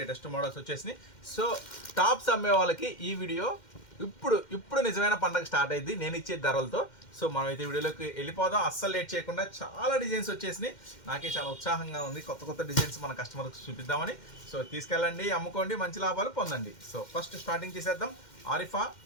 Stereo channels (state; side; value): late; right; 2.1 ms